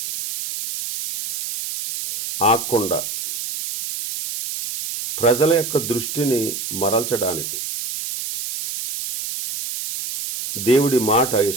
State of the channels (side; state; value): right; noise; hiss, 6 dB below the sound